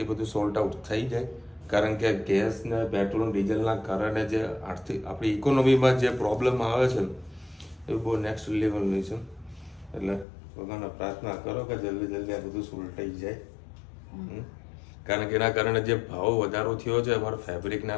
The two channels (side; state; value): right; drops out; at 10.2 s